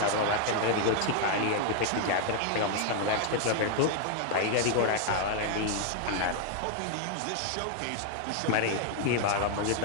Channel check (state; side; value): different; both; correlation 0.00